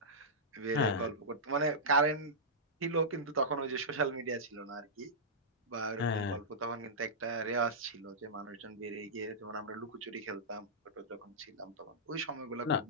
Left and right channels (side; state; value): both; normal; correlation -0.13